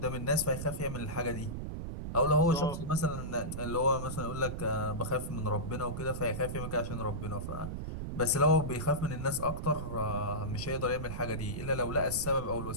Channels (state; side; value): noise; right; rumble, 5 dB below the sound